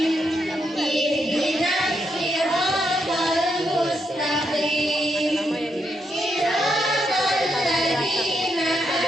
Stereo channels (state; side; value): normal; both; correlation 0.80